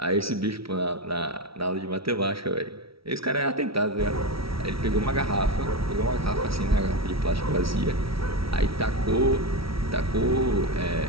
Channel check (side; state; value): left; late; 0.75 ms